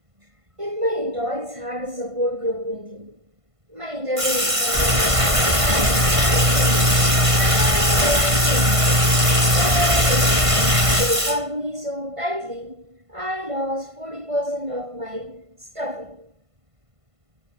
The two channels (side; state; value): left; late; 1.5 ms